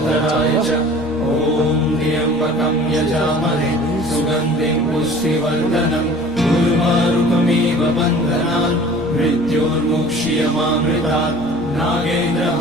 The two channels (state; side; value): noise; left; rumble, 21 dB below the sound